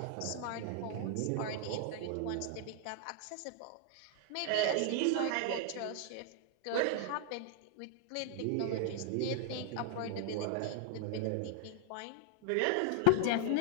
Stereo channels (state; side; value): different; both; correlation 0.00